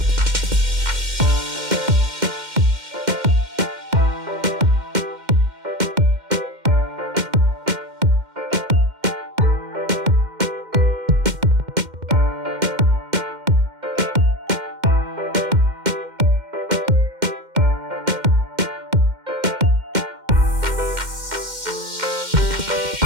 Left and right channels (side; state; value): left; late; 2.1 ms